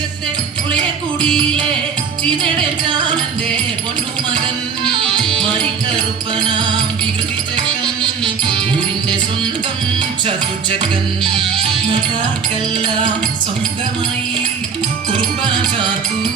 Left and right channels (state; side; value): quieter; left; 6.2 dB